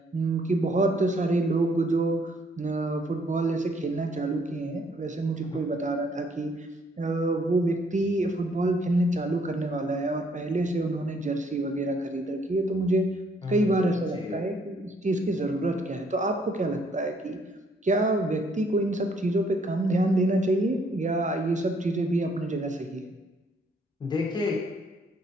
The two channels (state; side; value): normal; both; correlation 0.66